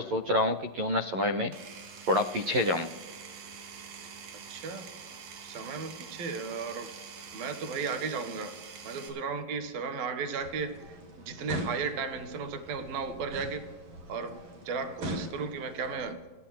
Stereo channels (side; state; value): left; late; 11 ms